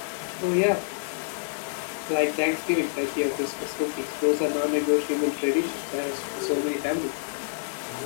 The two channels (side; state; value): right; silent; digital silence